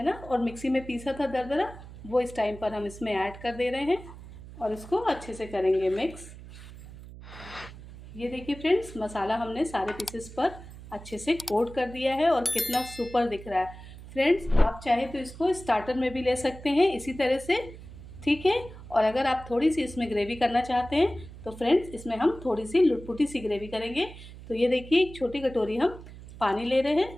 ना, और मिक्सी में पीसा था दरदरा, वो इस टाइम पर हम इसमें ऐड कर दे रहे हैं और इसको अच्छे से करेंगे मिक्स। ये देखिए फ्रेंड्स मसाला हमने सारे पीसेस पर अच्छे से कोट कर दिया है और कितना सुपर दिख रहा है। फ्रेंड्स आप चाहे तो इसको स्टार्टर में भी ले सकते हैं इसी तरह से। ठीक है, और अगर आप थोड़ी सी इसमें ग्रेवी करना चाहते हैं तो फ्रेंड्स इसमें हम थोड़ी सी लुटपुटी सी ग्रेवी करेंगे। तो ये देखिए एक छोटी कटोरी हम पानी ले रहे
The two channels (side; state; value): right; noise; hum, 16 dB below the sound